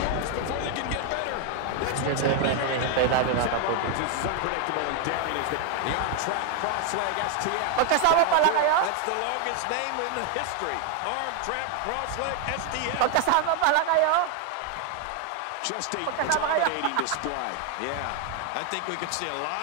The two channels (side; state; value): both; different; correlation 0.01